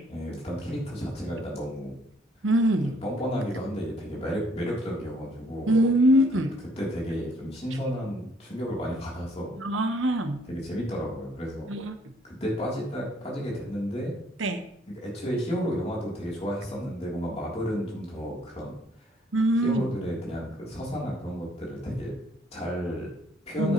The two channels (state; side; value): normal; both; correlation 0.64